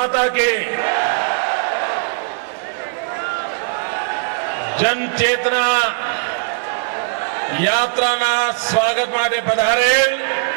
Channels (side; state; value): left; silent; 61 dB below the other